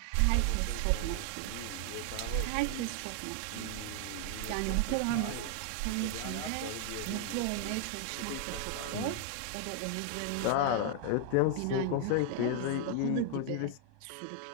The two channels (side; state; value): both; different; correlation 0.00